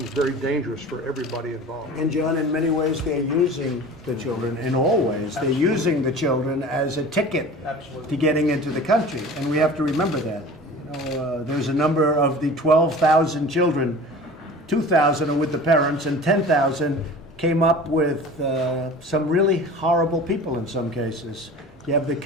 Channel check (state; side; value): normal; both; correlation 0.39